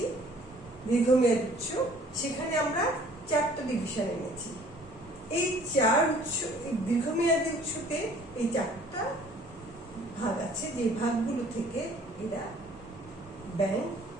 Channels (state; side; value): normal; both; correlation 0.55